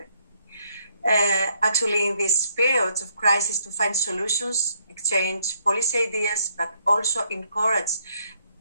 Actually, in these periods of crisis, to find solutions, exchange policy ideas, but also encourage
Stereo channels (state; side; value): inverted; both; correlation -0.71